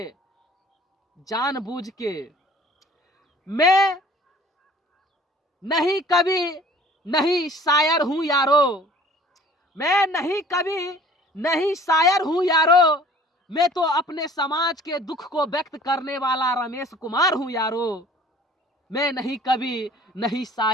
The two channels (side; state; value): both; normal; correlation 0.50